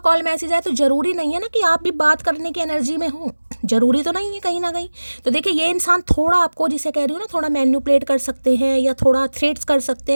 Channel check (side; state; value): both; inverted; correlation -1.00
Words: मैसेज आए तो ज़रूरी नहीं है ना कि आप भी बात करने की एनर्जी में हो, ज़रूरी तो नहीं है कहीं ना कहीं। तो देखिए ये इंसान थोड़ा आपको, जिसे कह रही हूँ ना, थोड़ा मैनिपुलेट कर सकते हैं या थोड़ा थ्रेट्स कर सकते